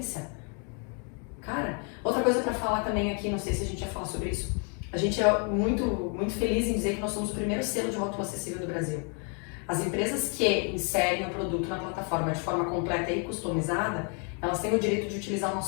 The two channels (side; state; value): right; quieter; 38.5 dB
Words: Cara, outra coisa pra falar também aqui, não sei se a gente ia falar sobre isso, a gente é muito, muito feliz em dizer que nós somos o primeiro selo de rótulo acessível do Brasil. As empresas que inserem o produto na plataforma de forma completa e customizada, elas têm o direito de utilizar o